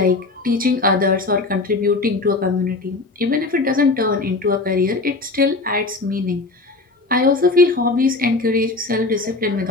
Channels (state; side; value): quieter; right; 3.4 dB